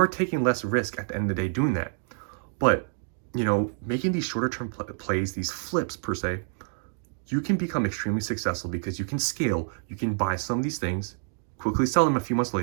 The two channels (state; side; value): silent; left; digital silence